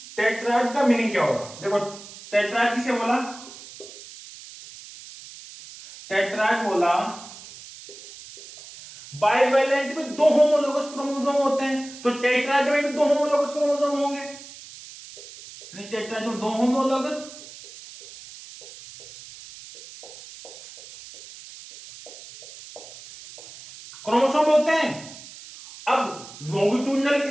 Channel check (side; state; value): right; noise; hiss, 17 dB below the sound